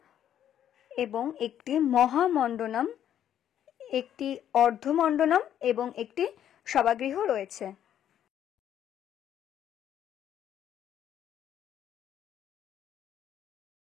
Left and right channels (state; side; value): quieter; right; 10.3 dB